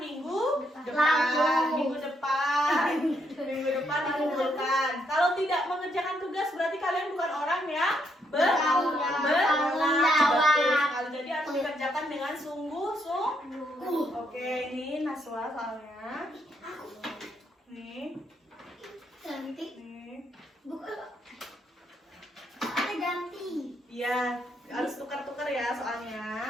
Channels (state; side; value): normal; both; correlation 0.76